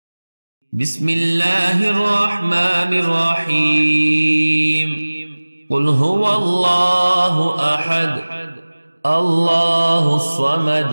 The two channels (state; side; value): inverted; both; correlation -1.00